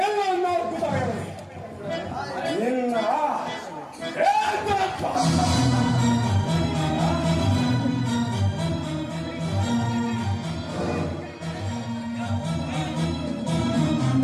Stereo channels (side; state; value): both; identical; correlation 1.00